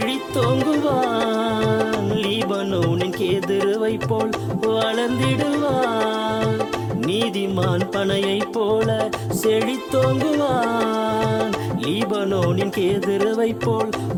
லீபனோனின் கேதுருவை போல் வளர்ந்திடுவான். நீதிமான் பனையைப் போல செழித்தோங்குவான், லீபனோனின் கேதுருவை போல்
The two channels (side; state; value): both; identical; correlation 1.00